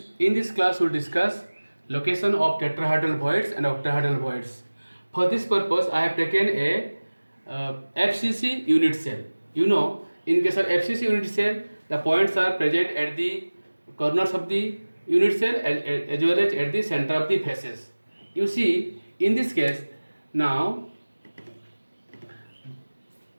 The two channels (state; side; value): inverted; both; correlation -1.00